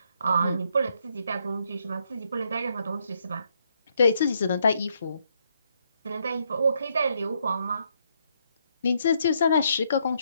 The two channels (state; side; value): inverted; both; correlation -0.75